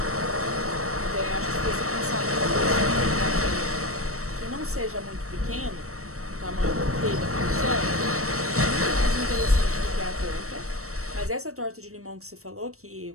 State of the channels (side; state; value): left; late; 0.64 ms